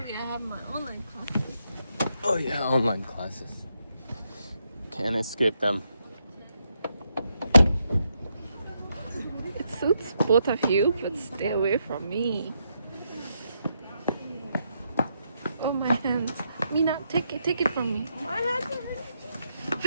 I have my online classes. Oh yeah, online classes. Can't escape them. It suits both of you, but stay away from me. Oh, my hands. Mina, take it from me. My hand.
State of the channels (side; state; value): both; inverted; correlation -0.80